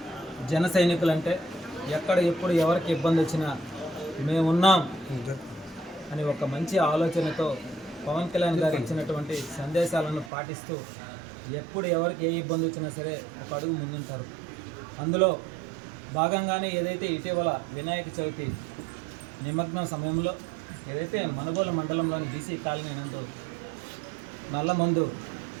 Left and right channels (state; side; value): drops out; left; at 10.3 s